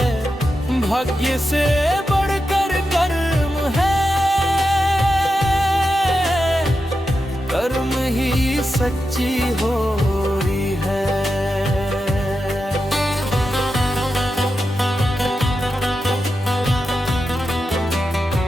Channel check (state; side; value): normal; both; correlation 0.89